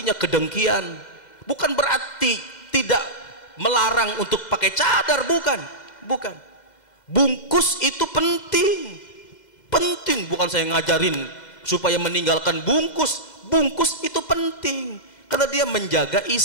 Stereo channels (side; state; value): right; late; 2.1 ms